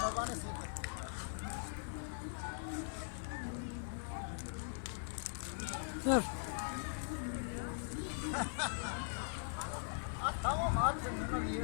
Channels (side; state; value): right; silent; 50 dB below the other